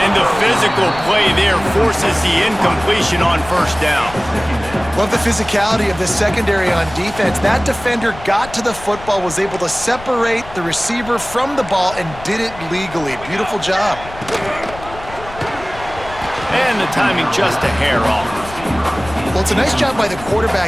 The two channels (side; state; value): left; noise; rumble, 16 dB below the sound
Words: the physical play there forces the incompletion on first down. Love the physicality of this secondary on defense. That defender got to the football, was able to separate the receiver from the ball, and did it legally. Beautiful job. And the timing just a hair off. Well, it's a nice job by the